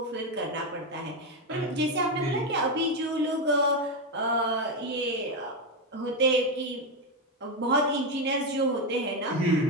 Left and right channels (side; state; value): both; normal; correlation 0.08